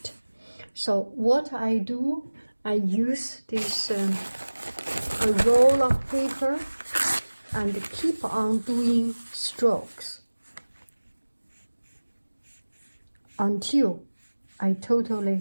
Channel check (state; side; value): inverted; both; correlation -1.00